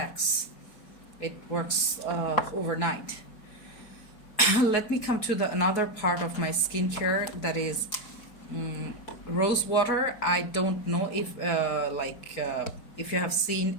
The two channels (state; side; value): late; right; 4.7 ms